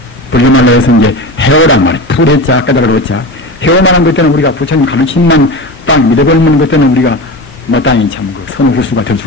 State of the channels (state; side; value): normal; both; correlation 0.27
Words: 불교말로 해서 이제 해오란 말이에요. 풀해자 깨달으로자 해오만한 것때는 우리가 부처님 가르침만 딱 믿어버리는 것때는 우리가 마땅히 참 그 선후후수가 될